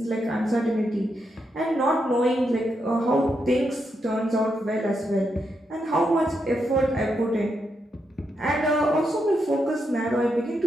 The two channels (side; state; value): both; normal; correlation 0.82